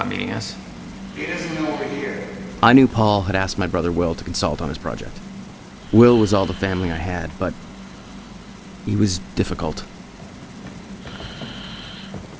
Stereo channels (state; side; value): identical; both; correlation 1.00